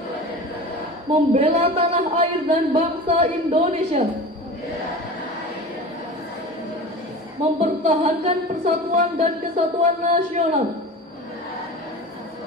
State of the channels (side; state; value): both; normal; correlation 0.34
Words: membela tanah air dan bangsa Indonesia, mempertahankan persatuan dan kesatuan nasional,